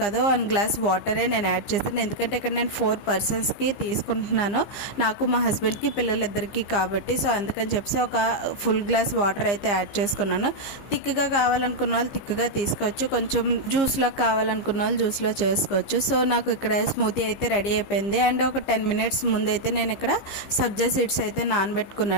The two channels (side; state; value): right; late; 15 ms